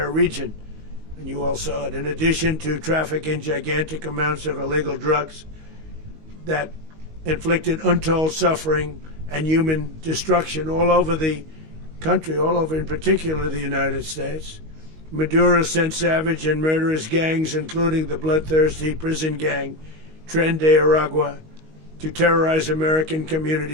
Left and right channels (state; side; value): late; left; 19 ms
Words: region. And you all saw it. In addition to trafficking gigantic amounts of illegal drugs that inflicted untold suffering and human destruction all over the country, all over in particular the United States, Maduro sent savage and murderous gangs, including the bloodthirsty prison gang, Tren de Aragua, to terrorize American